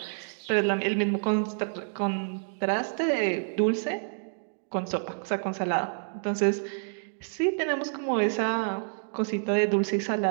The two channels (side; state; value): left; silent; digital silence